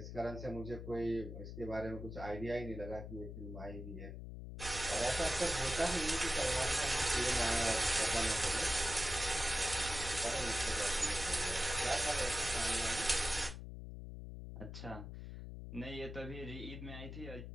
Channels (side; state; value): left; noise; hum, 9 dB below the sound